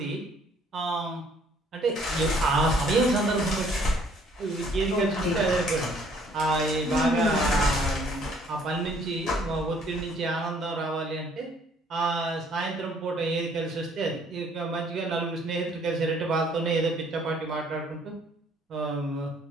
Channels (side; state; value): both; normal; correlation 0.61